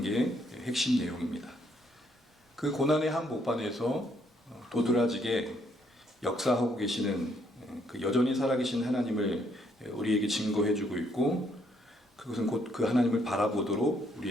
핵심 내용입니다. 그 고난의 한복판에서 도드라지게 역사하고 계시는 그 여전히 살아계신 하나님을 우리에게 증거해주고 있고, 그것은 곧 그 하나님을 바라보도록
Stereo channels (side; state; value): both; normal; correlation 0.70